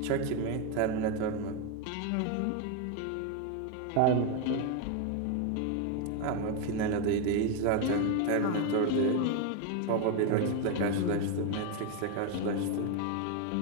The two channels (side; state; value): both; different; correlation 0.02